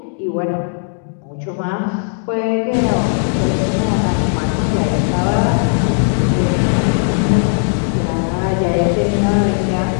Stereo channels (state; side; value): silent; right; 65 dB below the other